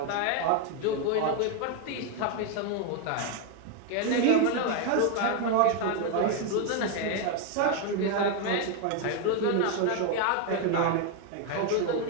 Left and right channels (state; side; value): different; both; correlation 0.01